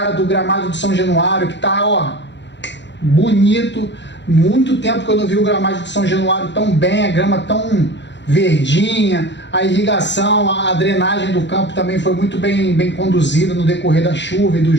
do gramado de São Januário, que tá, ó, bonito. Muito tempo que eu não vi o gramado de São Januário tão bem, a grama tão verdinha, a irrigação, a drenagem do campo também foi muito bem conduzida no decorrer da chuva e do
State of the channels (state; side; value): late; right; 0.52 ms